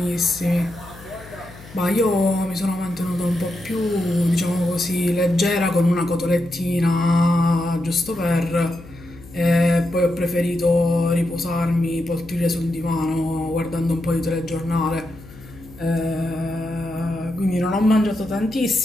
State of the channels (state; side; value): noise; left; hum, 19 dB below the sound